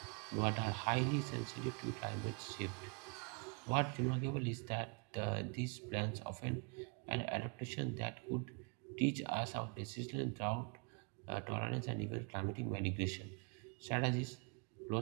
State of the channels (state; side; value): quieter; left; 34.8 dB